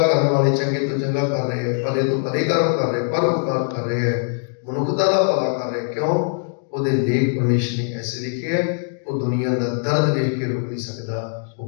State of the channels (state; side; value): silent; right; 63 dB below the other